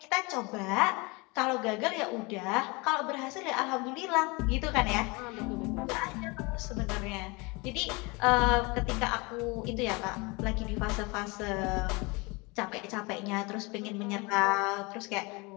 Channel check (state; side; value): quieter; right; 26.9 dB